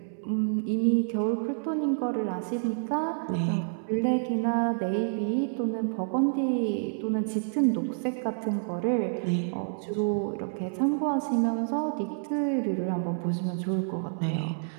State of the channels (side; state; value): left; silent; 59 dB below the other